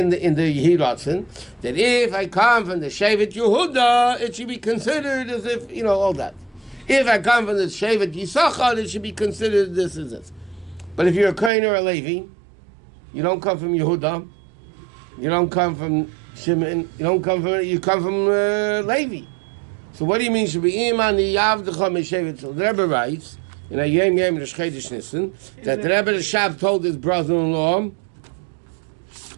the Hirotzen? That if I come from the Shevet Yehuda, it should be considered as if, all that. If I come from the Shevet Yisachar, it should be considered this as this. But if you're a Kohen or a Levi, you don't come from Yehuda, you don't come from Shimon, you come from Levi. So what do you mean? Should be Iman Yavdecha Meshevet? So the Rebbe writes in a Yom Yom Rosh Chodesh Nissan that the Rebbe Rashab told his brother-in-law,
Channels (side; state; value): left; drops out; at 11.5 s